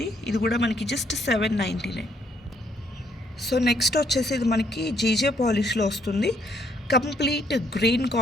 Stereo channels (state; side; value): normal; both; correlation 0.69